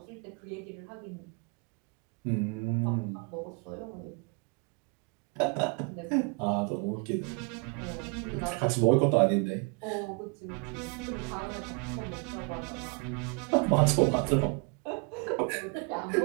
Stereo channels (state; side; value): quieter; left; 33.3 dB